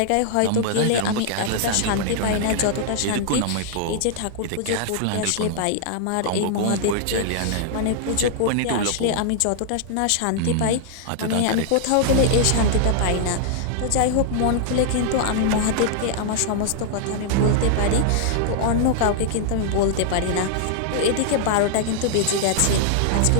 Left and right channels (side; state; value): both; different; correlation -0.01